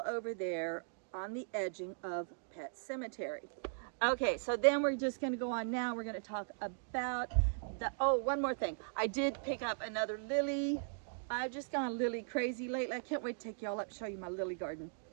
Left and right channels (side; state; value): left; silent; digital silence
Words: over there on the edging of Pet Cemetery. Okay, so then we're just going to go on now. We're going to talk about the, oh, one more thing. I did pick up another lily. I've just gone lily crazy lately. I can't wait to take y'all up, show you my lily garden.